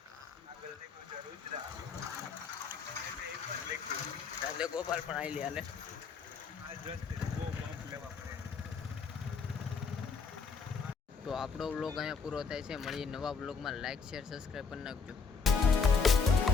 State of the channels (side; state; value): right; quieter; 5.0 dB